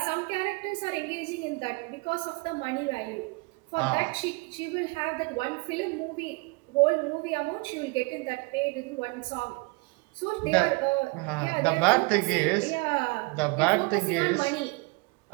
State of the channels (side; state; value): left; quieter; 27.9 dB